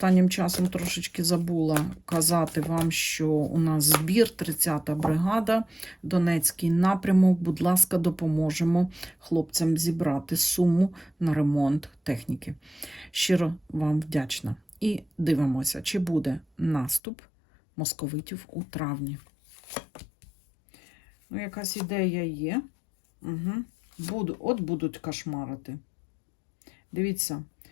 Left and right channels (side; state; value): right; drops out; at 17.0 s